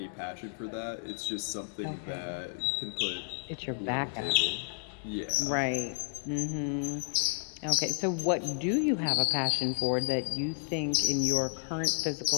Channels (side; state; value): right; silent; digital silence